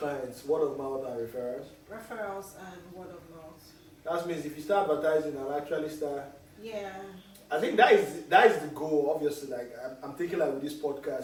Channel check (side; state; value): both; identical; correlation 1.00